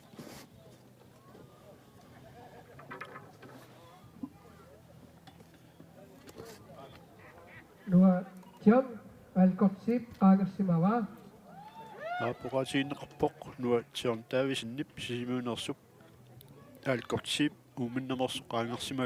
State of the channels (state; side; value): identical; both; correlation 1.00